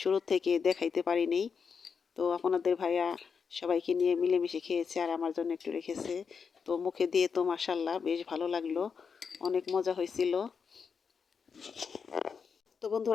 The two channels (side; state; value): right; quieter; 6.0 dB